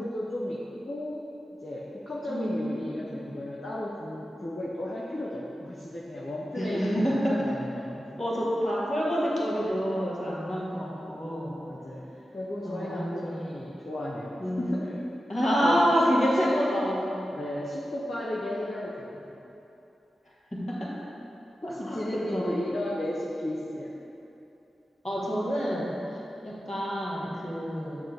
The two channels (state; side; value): normal; both; correlation 0.92